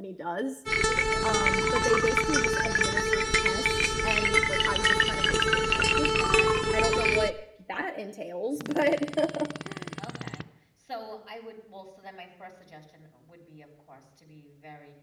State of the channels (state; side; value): identical; both; correlation 1.00